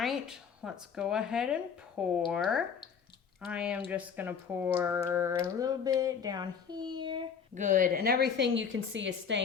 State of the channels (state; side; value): quieter; right; 6.7 dB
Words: let's go ahead and pour. I am just gonna pour a little bit down here. Good, and everything you can see is